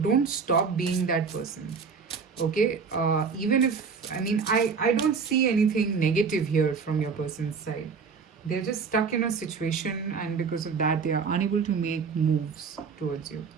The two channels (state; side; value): quieter; left; 5.4 dB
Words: stop being that person. Okay, even if I don't see anything negative here from your person's side. They're just stuck in a situation, and because of that they are unable to make moves towards you.